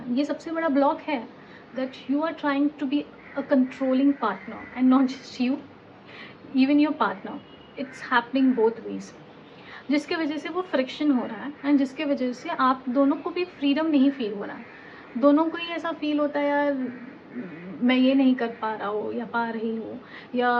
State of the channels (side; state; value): both; identical; correlation 1.00